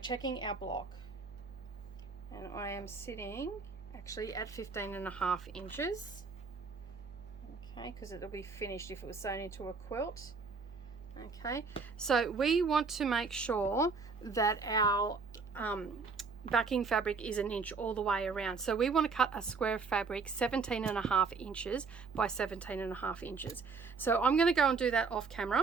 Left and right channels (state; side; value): quieter; left; 4.7 dB